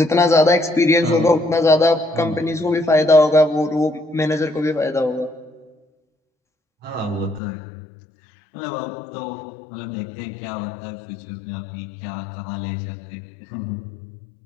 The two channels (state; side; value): drops out; right; at 7.4 s